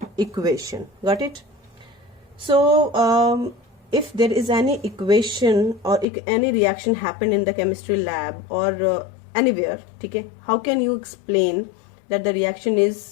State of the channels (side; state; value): right; drops out; at 6.1 s